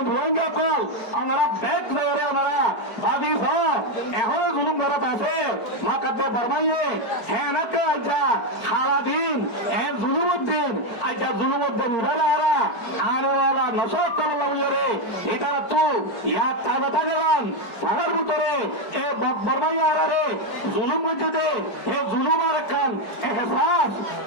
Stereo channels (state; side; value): late; right; 4.5 ms